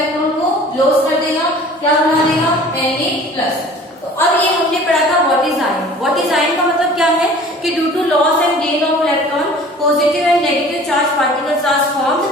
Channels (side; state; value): both; normal; correlation 0.46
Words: को लॉस कर देगा, क्या बना देगा, Na+। तो अब ये हमने पढ़ा था what is ion. What is ion का मतलब क्या है कि due to loss and gain of electron positive and negative charge particles are formed,